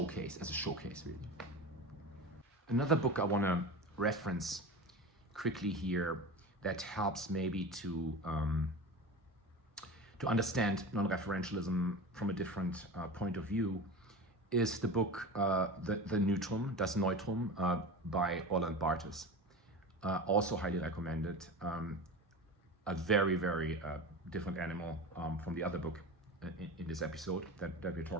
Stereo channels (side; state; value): both; normal; correlation 0.30